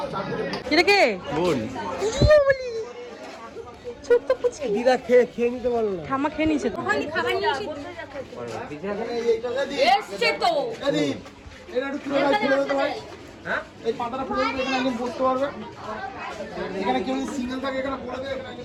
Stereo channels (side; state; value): both; identical; correlation 1.00